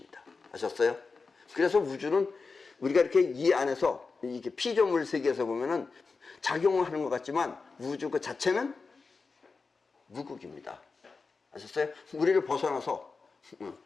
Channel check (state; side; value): quieter; right; 4.4 dB